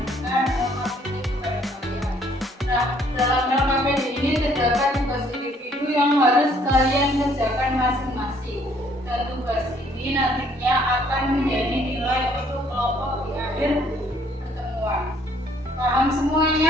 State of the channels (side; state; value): both; normal; correlation 0.63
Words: LKPD kepada kalian. Nah, dalam LKPD ini terdapat tugas individu yang harus kalian kerjakan masing-masing. Dan tugas ini nantinya akan menjadi nilai untuk kelompok di akhir pertemuan. Paham